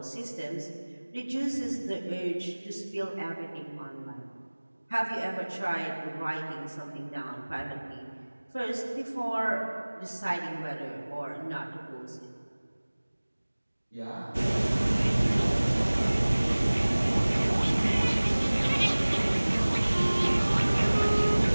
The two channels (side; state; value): both; inverted; correlation -1.00